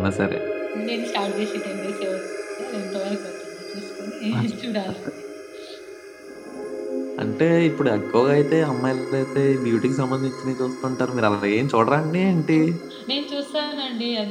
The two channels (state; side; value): identical; both; correlation 1.00